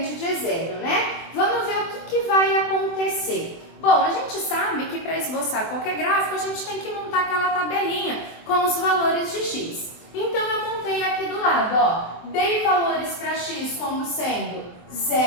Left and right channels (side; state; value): right; late; 23 ms